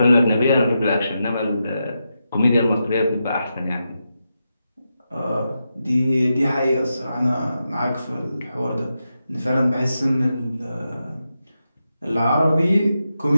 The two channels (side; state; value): both; inverted; correlation -0.87